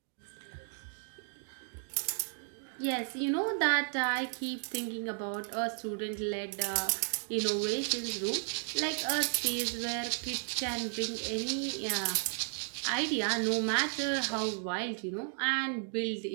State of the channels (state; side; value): silent; left; 55 dB below the other